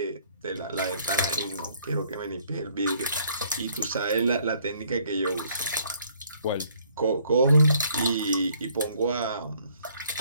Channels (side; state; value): both; inverted; correlation -0.63